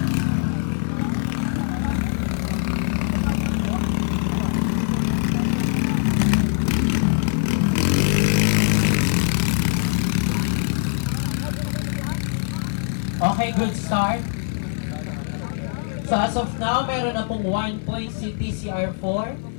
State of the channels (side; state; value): right; silent; 64 dB below the other